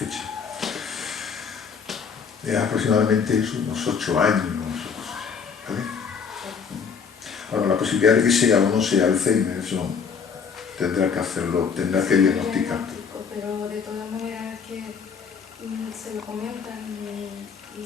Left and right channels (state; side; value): quieter; right; 6.2 dB